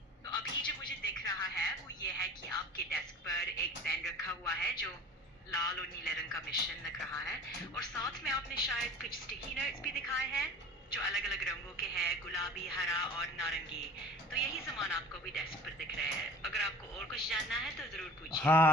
तो अभी जो मुझे दिख रहा है वो ये है कि आपके डेस्क पर एक पेन रखा हुआ है जो लाल और नीले रंग का मिश्रण लग रहा है, और साथ में आपने शायद कुछ स्टिकी नोट्स भी दिखाए हैं जो अलग अलग रंगों के हैं, गुलाबी, हरा और नारंगी। तो यही सामान आपको भी डेस्क पर दिख रहे हैं। अगर आपको और कुछ जानना है तो जरूर पूछिए।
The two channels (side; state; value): both; normal; correlation 0.41